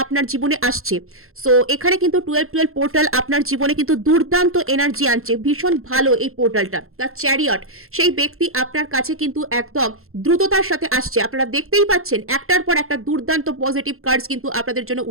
আপনার জীবনে আসছে। সো এখানে কিন্তু 1212 পোর্টাল আপনার জীবনে কিন্তু দুর্দান্ত এনার্জি আনছে। ভীষণ ভালো এই পোর্টালটা। দ্য চ্যারিয়ট, সেই ব্যক্তি আপনার কাছে কিন্তু একদম দ্রুততার সাথে আসছে। আপনারা দেখতেই পাচ্ছেন একটার পর একটা দুর্দান্ত পজিটিভ কার্ডস কিন্তু আপনাদের জন্য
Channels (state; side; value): late; left; 0.62 ms